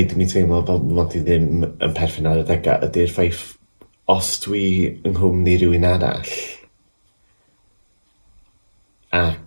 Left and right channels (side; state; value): both; inverted; correlation -1.00